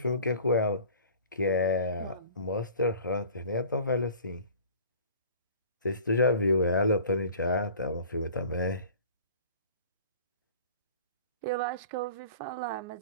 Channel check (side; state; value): both; inverted; correlation -0.46